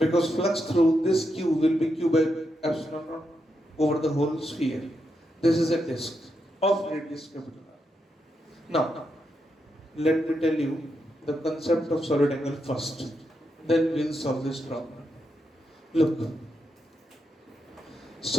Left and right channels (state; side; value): normal; both; correlation 0.83